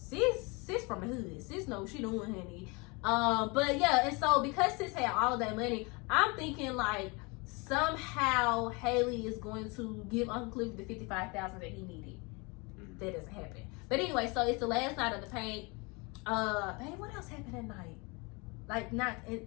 from the hood, sis knows she doing, honey. But yeah, and so because sis had all of that money, I'm thinking like somehow Haley is going to give Uncle Cliff the $55,000 that he needed. That doesn't happen. But anyway, so it's the last night of the paint. Babe, what else happened that night? Like,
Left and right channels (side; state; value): right; quieter; 28.5 dB